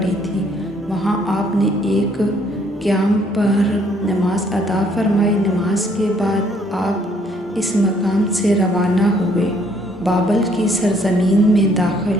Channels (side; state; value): both; normal; correlation 0.65